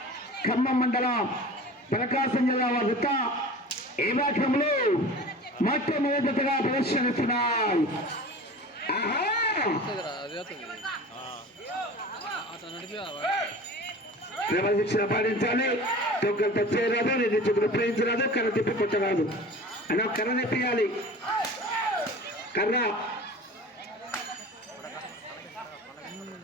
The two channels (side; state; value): both; normal; correlation 0.38